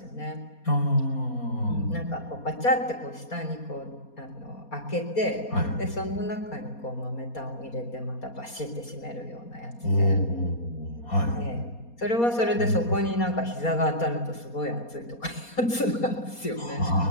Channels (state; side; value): late; right; 4.2 ms